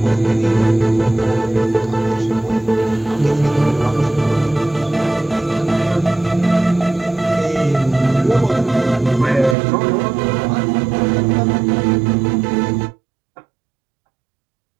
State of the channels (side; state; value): left; drops out; at 9.6 s